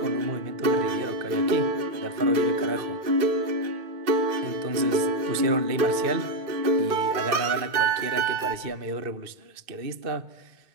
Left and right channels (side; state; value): left; late; 2.6 ms